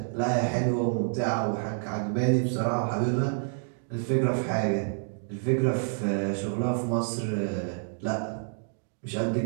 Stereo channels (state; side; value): silent; left; digital silence